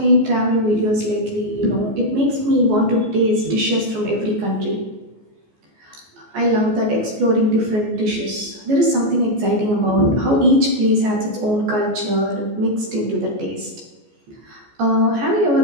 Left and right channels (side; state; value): left; late; 14 ms